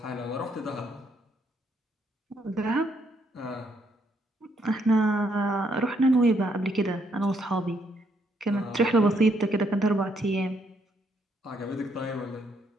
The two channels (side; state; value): both; normal; correlation 0.73